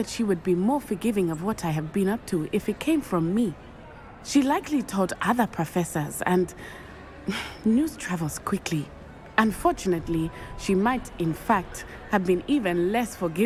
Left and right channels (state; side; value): identical; both; correlation 1.00